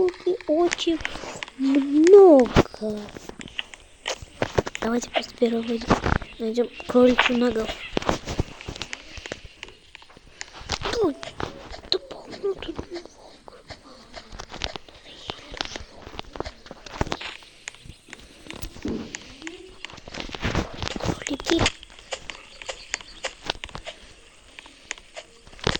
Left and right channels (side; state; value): both; identical; correlation 1.00